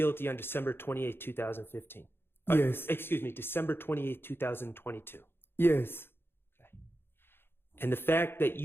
on December 28, 2015? Yes. Excuse me, December 28, 2022. Yes. Okay. And the fact that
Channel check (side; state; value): right; late; 0.11 ms